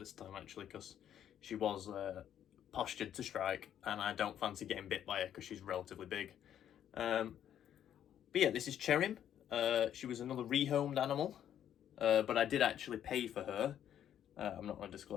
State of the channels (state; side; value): quieter; right; 10.2 dB